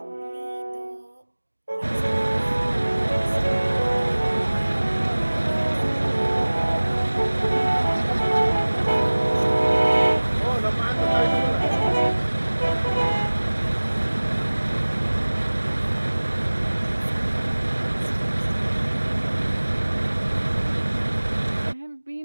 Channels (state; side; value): inverted; both; correlation -1.00